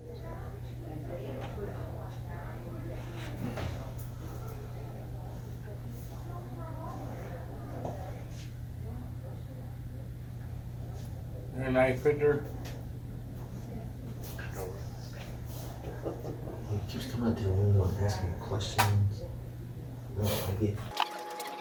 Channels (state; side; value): identical; both; correlation 1.00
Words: You're a knife fitter? He keeps coming out to the window and asking questions. No, I get.